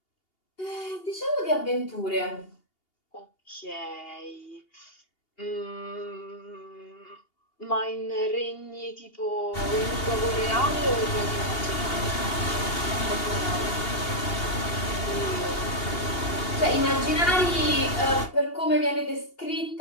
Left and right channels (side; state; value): right; late; 2.8 ms